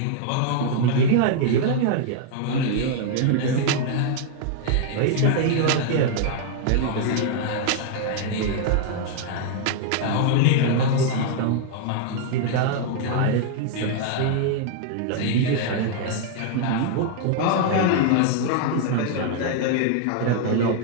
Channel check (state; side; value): different; both; correlation 0.00